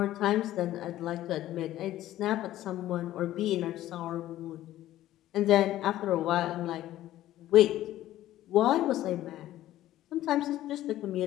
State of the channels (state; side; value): quieter; right; 14.0 dB